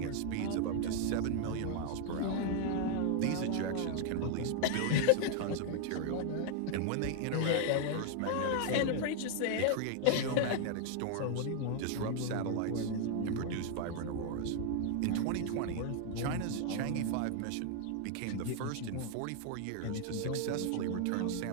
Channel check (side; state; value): both; different; correlation 0.00